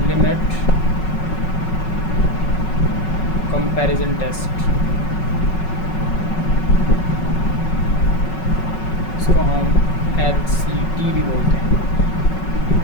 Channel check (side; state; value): right; late; 5.4 ms